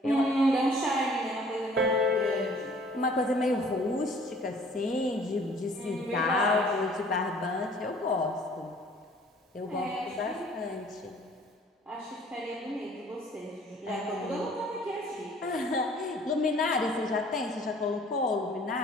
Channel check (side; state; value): both; normal; correlation 0.54